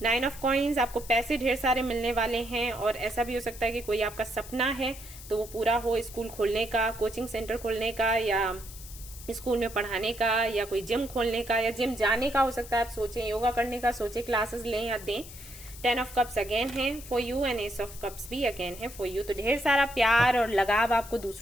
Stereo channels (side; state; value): left; noise; hiss, 15 dB below the sound